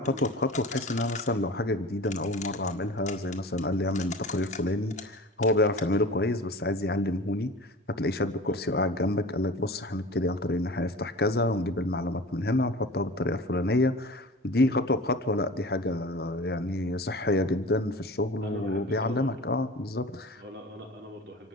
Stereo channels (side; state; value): both; normal; correlation 0.38